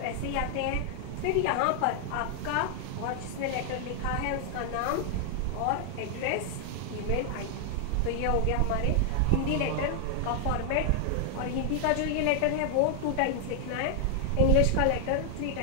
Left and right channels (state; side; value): different; both; correlation 0.00